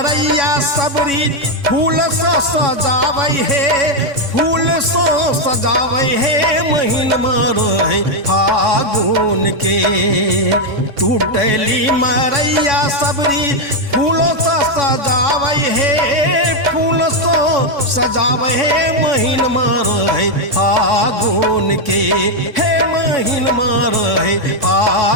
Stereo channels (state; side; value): late; left; 3.6 ms